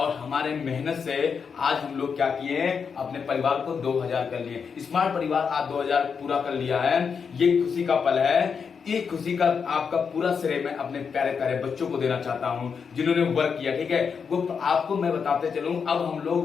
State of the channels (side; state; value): right; quieter; 6.1 dB